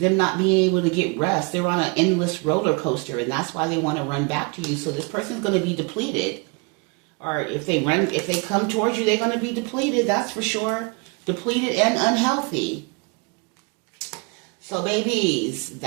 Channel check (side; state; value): left; quieter; 31.5 dB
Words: not being able to get rest. They're on an endless roller coaster, and that's why they want to run back to you. So this person's going to be depleted. Or if they come towards you, they're going to be depleted. That's for sure. Depleted and unhealthy. So babies,